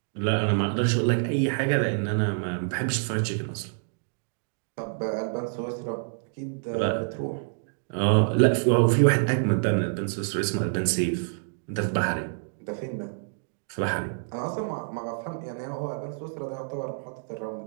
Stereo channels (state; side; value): silent; left; digital silence